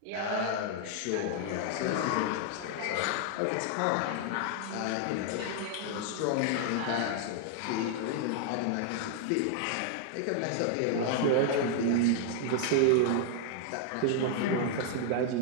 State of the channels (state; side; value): different; both; correlation 0.00